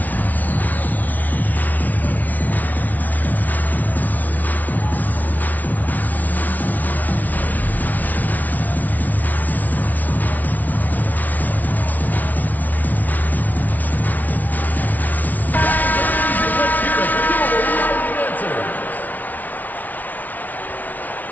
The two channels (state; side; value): late; right; 0.078 ms